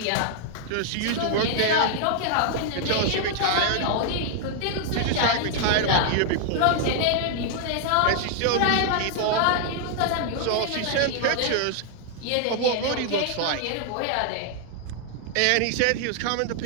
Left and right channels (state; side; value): different; both; correlation 0.00